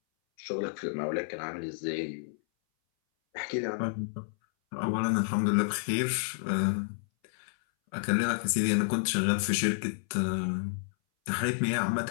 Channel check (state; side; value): silent; right; 58 dB below the other